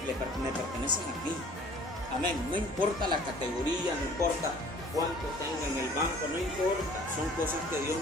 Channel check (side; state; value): both; normal; correlation 0.51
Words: a mí. Amén. No importa la categoría, no importa cuánto tenga en el banco, no importa. Son cosas que Dios